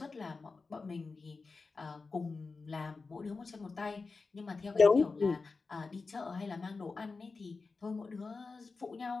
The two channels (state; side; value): quieter; right; 4.2 dB